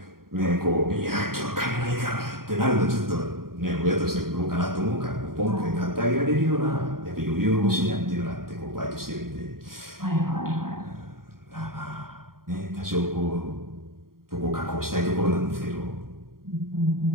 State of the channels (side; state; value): left; late; 0.92 ms